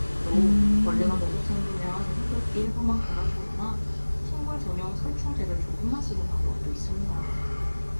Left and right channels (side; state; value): both; inverted; correlation -1.00